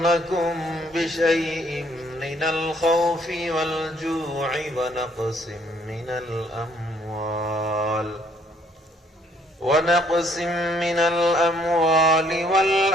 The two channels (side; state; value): both; normal; correlation 0.65